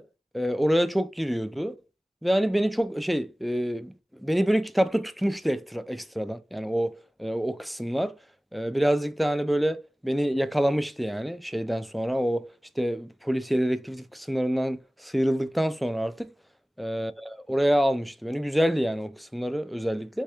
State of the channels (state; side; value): normal; both; correlation 0.98